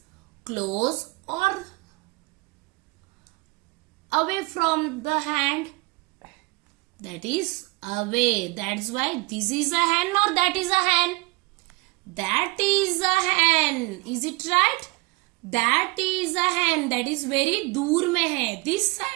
close or away from the hand? That is away. That's why this is a hen or that is a hen? That is a hen. Is it right? That is a hen. That is very दूर में है. This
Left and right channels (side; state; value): left; quieter; 24.6 dB